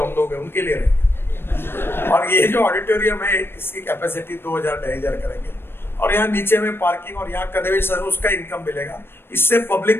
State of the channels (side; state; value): right; late; 0.11 ms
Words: हम लोग हैं उनके लिए रहेंगे। और ये जो ऑडिटोरियम है इसकी कैपेसिटी 2,000-2,500 करेंगे, और यहाँ नीचे में पार्किंग और यहाँ कन्वेंशन, उसका इनकम मिलेगा। इससे